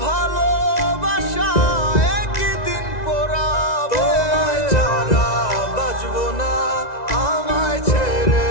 ভালোবাসা একই দিন পোড়াবে। তোমায় ছাড়া বাঁচবো না, আমায় ছেড়ে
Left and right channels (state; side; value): late; right; 1.9 ms